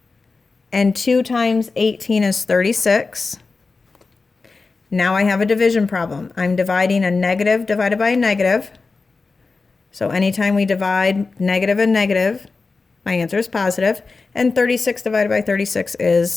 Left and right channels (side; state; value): right; quieter; 4.1 dB